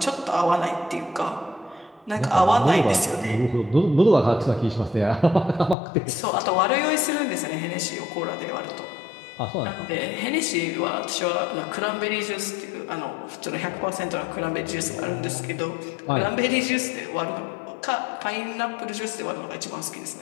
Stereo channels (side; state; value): right; drops out; at 5.8 s